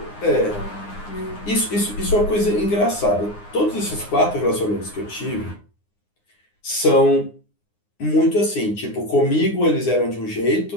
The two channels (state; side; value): late; right; 9.7 ms